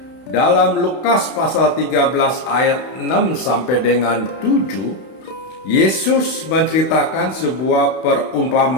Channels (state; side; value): late; right; 32 ms